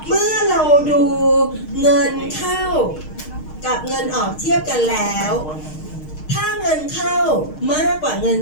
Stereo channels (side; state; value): right; late; 6.5 ms